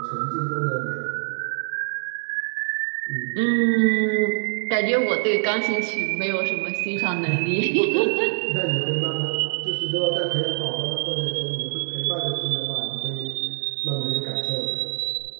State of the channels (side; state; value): left; silent; digital silence